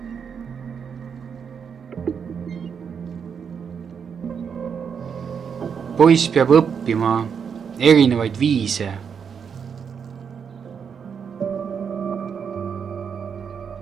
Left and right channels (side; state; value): left; quieter; 6.8 dB